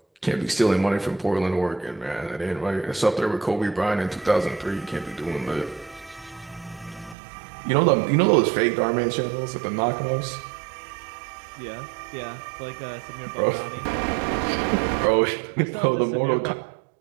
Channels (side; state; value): left; drops out; at 7.2 s